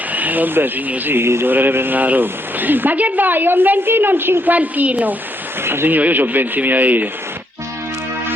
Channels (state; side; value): normal; both; correlation 0.75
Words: Vabbè signor sì, dovrei prendere la roba. Ma che vuoi, un ventino o un cinquantino? Ah signor io ho 20.000 euro.